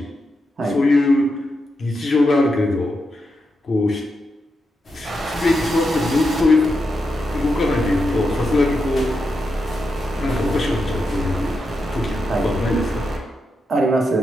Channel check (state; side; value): normal; both; correlation 0.86